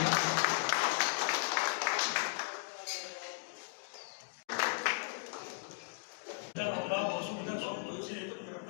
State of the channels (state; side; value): silent; right; digital silence